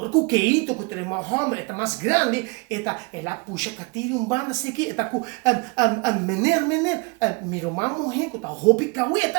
Keito, que tem uma homem, é mais grande, ela puxa Katiri banda assim aqui, com menor, miro uma mulher que tá roupa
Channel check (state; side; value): quieter; left; 28.8 dB